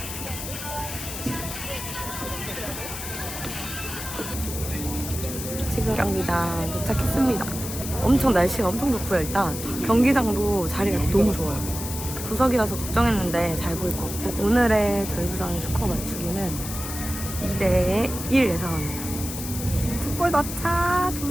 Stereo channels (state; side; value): noise; left; hiss, 8 dB below the sound